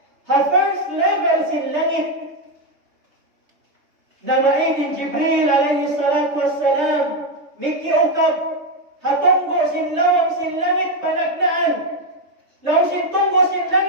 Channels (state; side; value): late; left; 3.3 ms